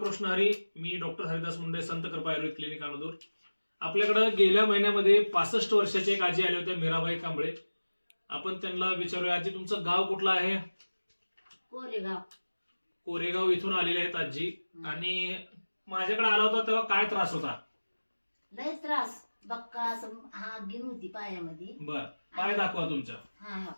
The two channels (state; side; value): inverted; both; correlation -1.00